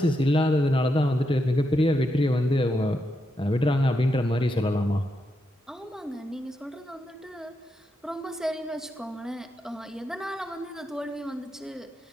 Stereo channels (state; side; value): normal; both; correlation 0.84